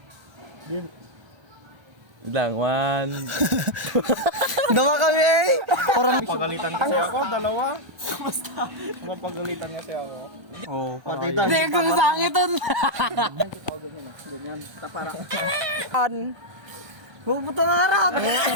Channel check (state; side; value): late; left; 1.2 ms